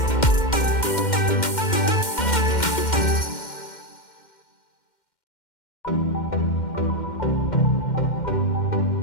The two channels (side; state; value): right; late; 2.1 ms